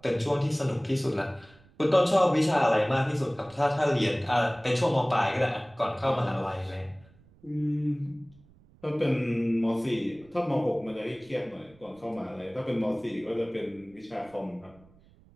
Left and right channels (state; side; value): noise; right; rumble, 27 dB below the sound